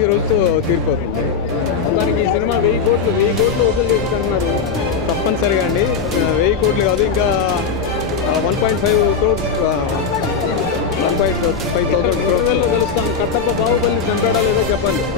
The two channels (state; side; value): quieter; right; 5.8 dB